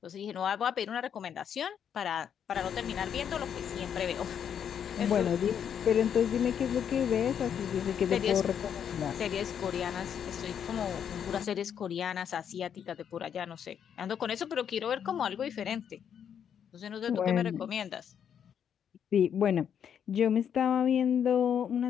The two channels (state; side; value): quieter; right; 8.4 dB